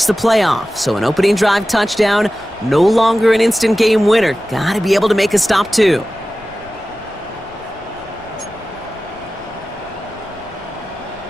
the playoff. So an opening drive touchdown, no longer an instant game winner. Gotta be able to make a stop too.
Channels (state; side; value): noise; left; rumble, 24 dB below the sound